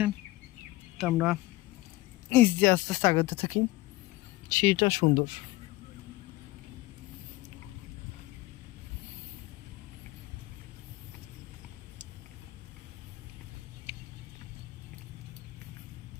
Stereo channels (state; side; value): quieter; right; 18.6 dB